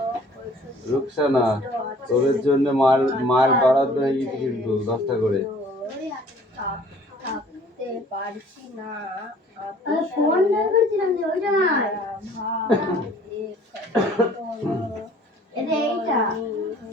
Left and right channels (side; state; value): both; normal; correlation 0.54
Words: রুকসানা, তোদের জন্য মার বরাদ্দ হয়ে গেছে কিন্তু 10টা করে। পারছি না ফোন বের করছিলাম যে ওইটা নাই এইটা